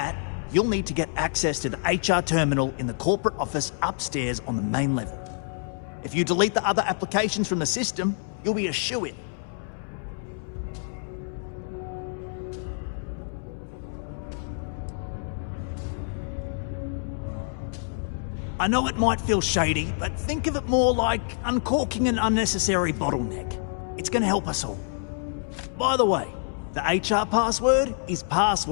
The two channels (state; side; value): silent; right; 60 dB below the other